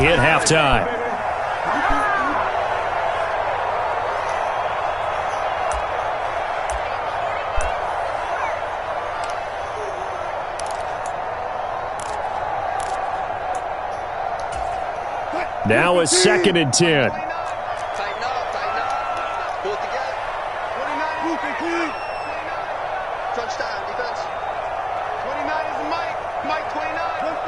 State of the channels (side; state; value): both; identical; correlation 1.00